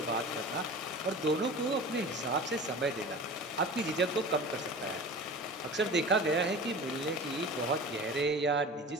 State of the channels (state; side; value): normal; both; correlation 0.37